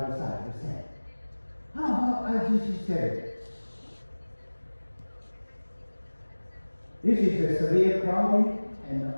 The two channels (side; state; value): both; inverted; correlation -1.00